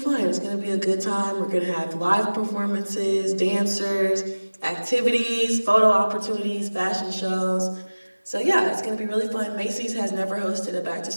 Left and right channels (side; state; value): both; inverted; correlation -1.00